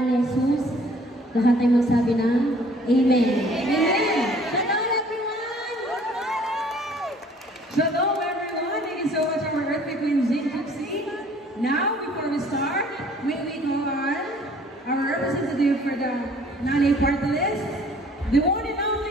ni Jesus, lahat ay magsabi ng Amen. Amen. Shalom everyone! Shalom everyone! Thank you so much our Earthquake Queen Zing Gypsy. Now, before we start, may we call on our representative for the Nanay Party List, the one and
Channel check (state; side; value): normal; both; correlation 0.55